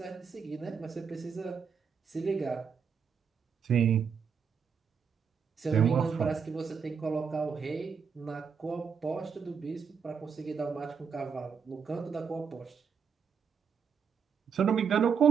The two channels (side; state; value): left; quieter; 6.4 dB